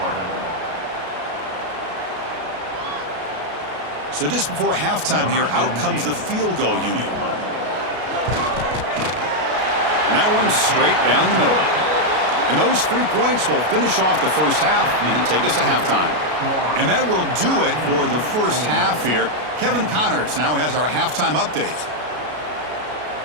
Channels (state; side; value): late; left; 33 ms